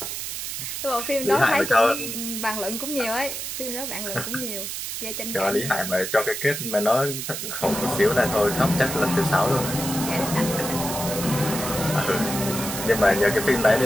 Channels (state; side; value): noise; right; hiss, 5 dB below the sound